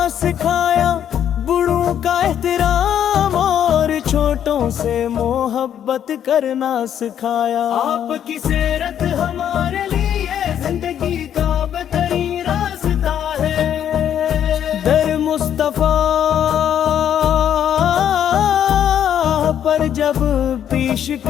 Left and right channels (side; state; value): right; quieter; 9.7 dB